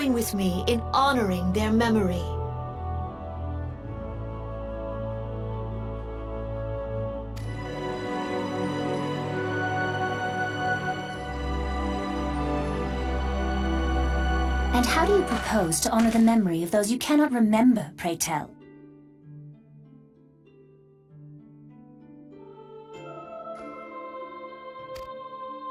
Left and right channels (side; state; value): both; identical; correlation 1.00